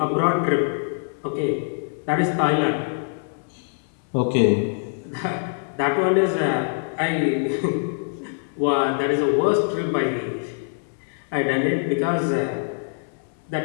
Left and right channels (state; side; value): silent; right; digital silence